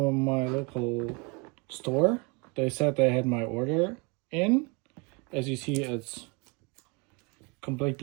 my local store. They said they had my order in. As you see, it's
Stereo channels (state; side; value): quieter; left; 30.6 dB